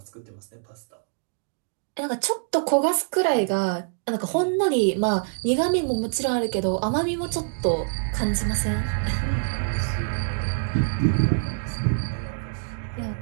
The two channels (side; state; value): left; silent; digital silence